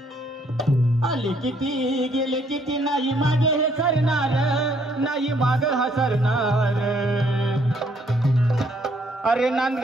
आले किती गेले किती नाही मागे हे सरणार नाही माग हसरणार। अरे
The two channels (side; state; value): both; normal; correlation 0.67